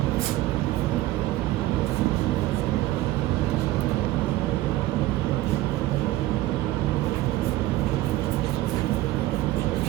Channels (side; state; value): left; quieter; 16.3 dB